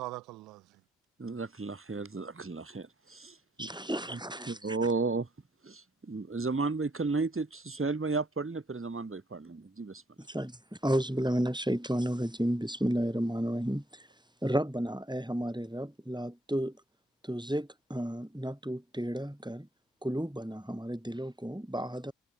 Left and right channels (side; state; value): both; normal; correlation 0.72